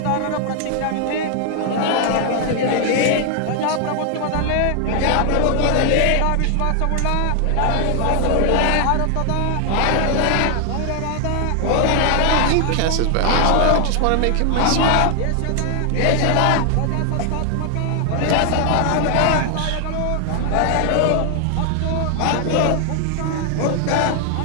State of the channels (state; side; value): different; both; correlation 0.00